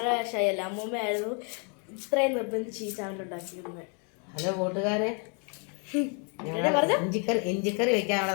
ഷൈ അല്ല, അമ്മൂമ്മയായിരുന്നു ഇത്രയും നിർബന്ധിച്ച് ഈ ചാനൽ ഉണ്ടാക്കിയിരുന്നത്. ഹലോ കൂട്ടുകാരെ, ഇഞ്ചിക്കറി വെക്കാനുള്ള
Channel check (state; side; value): quieter; right; 37.8 dB